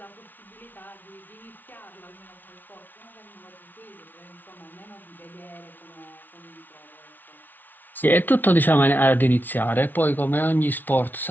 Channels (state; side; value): late; right; 0.088 ms